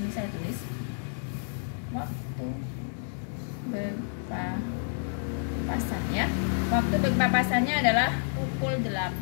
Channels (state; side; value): silent; right; digital silence